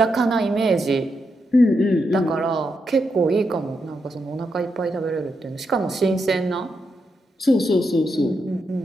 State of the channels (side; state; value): both; normal; correlation 0.83